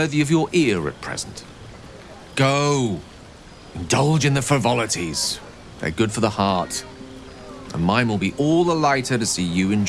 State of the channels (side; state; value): both; identical; correlation 1.00